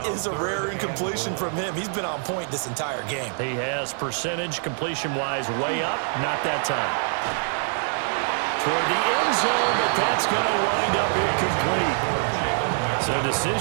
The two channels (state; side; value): silent; left; 57 dB below the other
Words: is a rare incompletion from him. He's been on point this entire game. He has percentage completion-wise way up. Not that time. Toward the end zone, but that's going to wind up incomplete. So